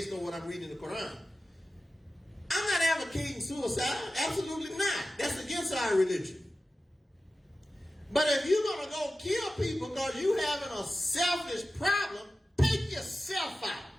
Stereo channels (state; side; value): normal; both; correlation 0.94